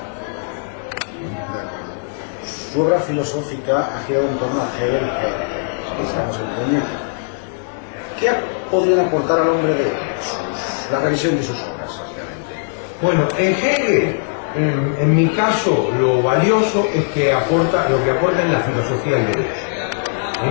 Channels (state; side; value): silent; right; digital silence